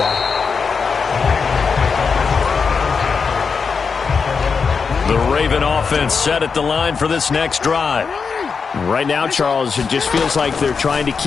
The Raven offense set at the line for this next drive. Right now, Charles, it just feels like they're trying to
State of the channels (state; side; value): quieter; right; 5.4 dB